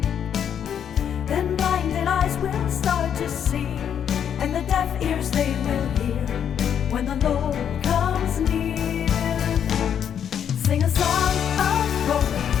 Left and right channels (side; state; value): right; quieter; 8.6 dB